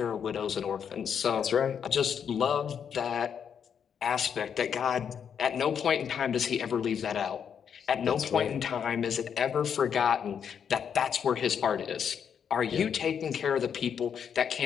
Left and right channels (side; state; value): right; quieter; 7.7 dB